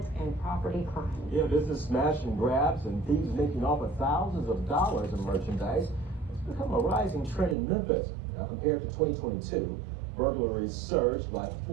and property crime. Yeah, business smash and grabs and thieves making off with thousands of dollars in merchandise. It's become a rising trend in Memphis. Now, compared to 2022, burglaries surged by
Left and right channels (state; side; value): drops out; left; at 7.6 s